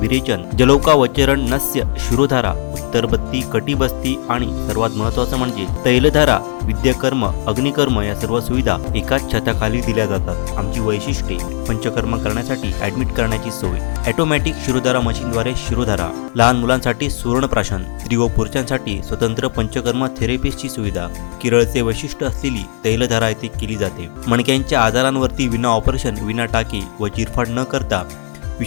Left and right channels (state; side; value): silent; right; 55 dB below the other